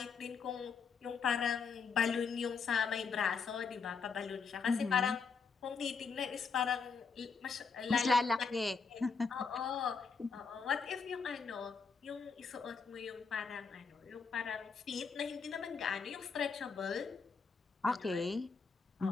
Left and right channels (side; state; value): right; quieter; 5.3 dB